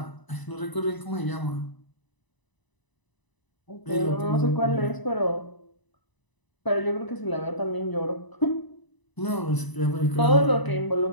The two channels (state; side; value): late; right; 1.0 ms